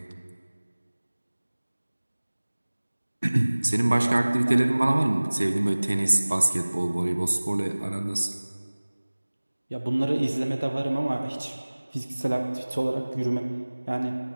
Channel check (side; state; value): both; inverted; correlation -1.00